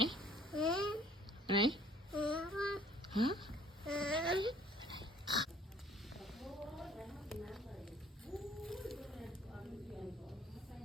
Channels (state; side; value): normal; both; correlation 0.56